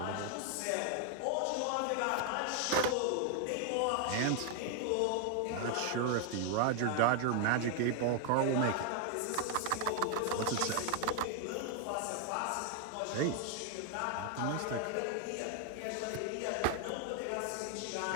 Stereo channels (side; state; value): both; different; correlation 0.00